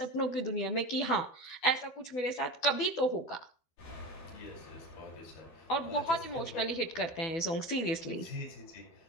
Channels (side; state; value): right; late; 12 ms